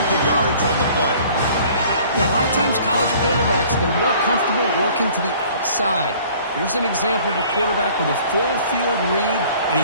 of yardage on the play. A lot of times college quarterbacks, they're more comfortable working to the outside. Here's an example of a quarterback with a full field read, and he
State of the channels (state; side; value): inverted; both; correlation -0.52